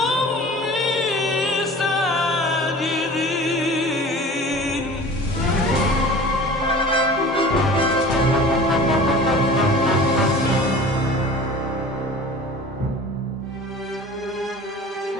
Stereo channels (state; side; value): normal; both; correlation 0.41